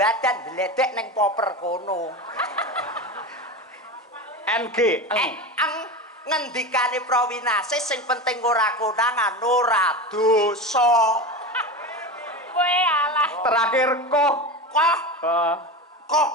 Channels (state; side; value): normal; both; correlation 0.25